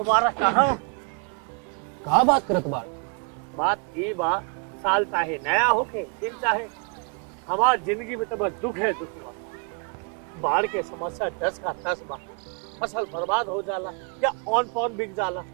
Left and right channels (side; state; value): left; quieter; 36.3 dB